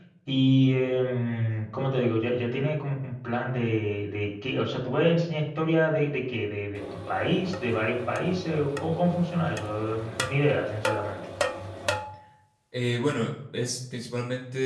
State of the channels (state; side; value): identical; both; correlation 1.00